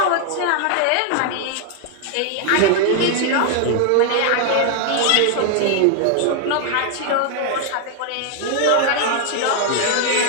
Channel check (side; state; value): both; different; correlation 0.00